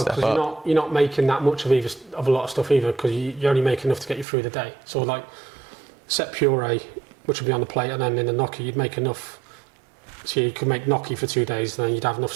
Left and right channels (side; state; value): left; drops out; at 4.2 s